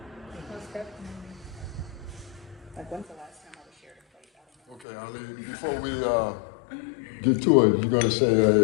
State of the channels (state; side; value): drops out; right; at 4.9 s